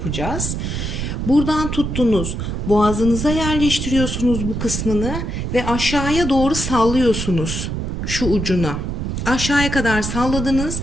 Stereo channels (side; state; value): right; noise; rumble, 3 dB below the sound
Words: Buradan tuttunuz. Boğazınıza yerleştiriyorsunuz bu kısmını ve aşağıya doğru sallıyorsunuz şu ucuna. Aşağıya kadar salladınız.